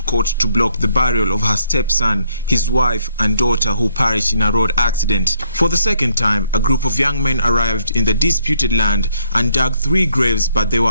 court to block the burial of her stepson, his wife and daughter who perished in a road accident. For the second time, a group of young men arrived in the disputed land and dug 3 graves, but they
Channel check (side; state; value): both; inverted; correlation -0.70